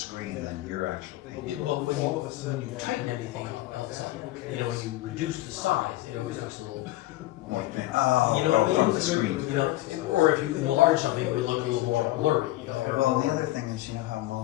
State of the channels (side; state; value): right; quieter; 17.0 dB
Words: than your actual thing. Well, when you tighten anything else up, you know, when you reduce the size, it always looks a little. Oh, You know what I mean? from the screen. You know, or if you enlarge something, it would look a little more blurry. You know? Well, the other thing is, you know how